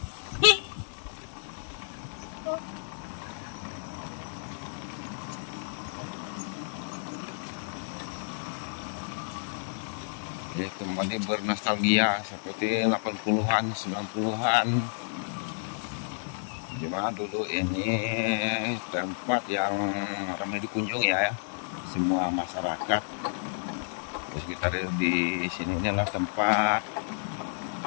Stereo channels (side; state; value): right; silent; digital silence